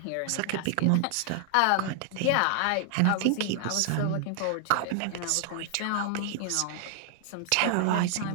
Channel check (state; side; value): different; both; correlation 0.00